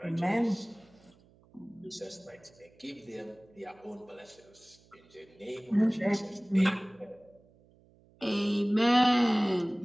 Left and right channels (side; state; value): right; noise; hum, 29 dB below the sound